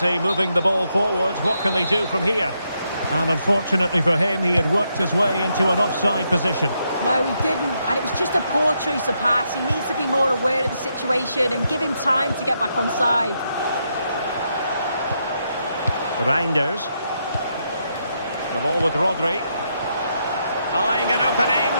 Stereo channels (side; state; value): both; inverted; correlation -0.79